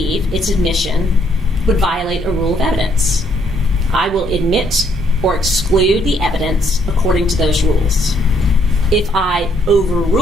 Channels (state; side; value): normal; both; correlation 0.69